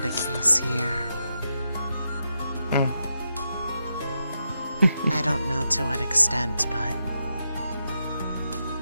case here. I don't know to what extent, but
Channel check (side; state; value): both; inverted; correlation -0.85